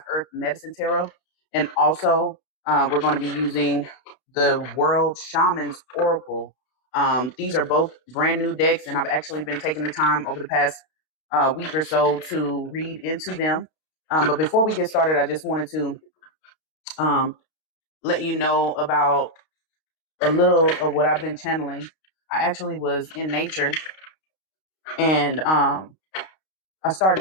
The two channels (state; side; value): late; right; 32 ms